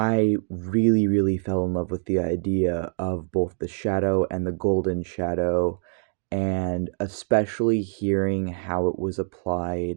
really, really fell in love with the idea of both the shadow and the golden shadow, and especially hearing how it was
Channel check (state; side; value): silent; left; digital silence